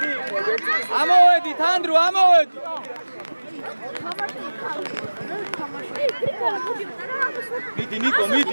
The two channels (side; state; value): both; inverted; correlation -1.00